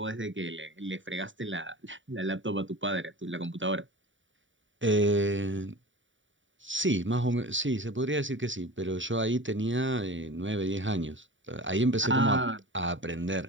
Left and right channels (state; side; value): late; left; 0.55 ms